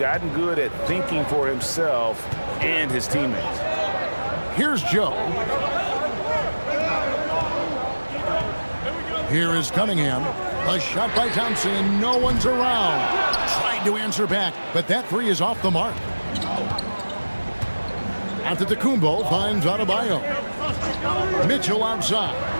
good at thinking for himself and his teammates. Here's Joe. Here is Cunningham. A shot by Thompson, and no one's around. Trying to answer back, but that 3 is off the mark. Antetokounmpo finds Adebayo. Mitchell outside.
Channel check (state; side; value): inverted; both; correlation -1.00